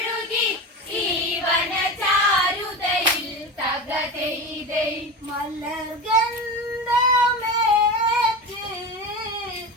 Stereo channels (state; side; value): normal; both; correlation 0.25